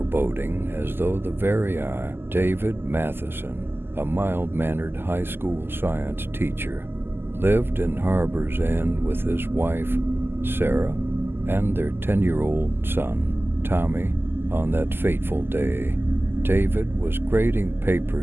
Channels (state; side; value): late; left; 0.11 ms